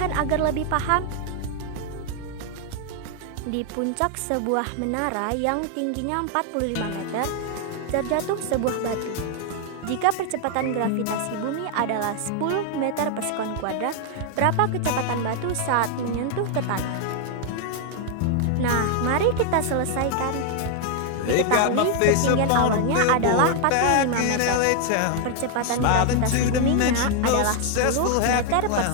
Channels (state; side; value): different; both; correlation 0.00